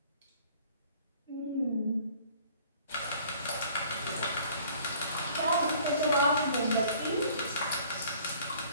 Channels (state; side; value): inverted; both; correlation -0.54